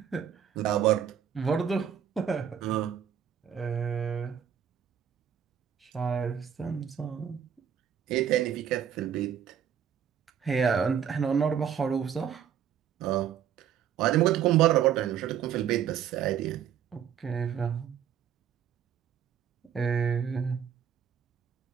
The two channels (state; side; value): quieter; left; 8.8 dB